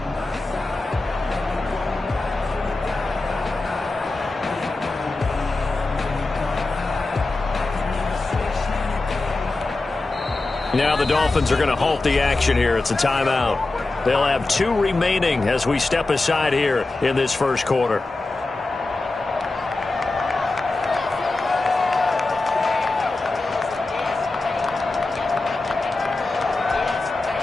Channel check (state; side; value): quieter; right; 3.2 dB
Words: Now the Dolphins are going to halt the action here. It's a timeout. They'll have 2 remaining as we step aside here in this first quarter.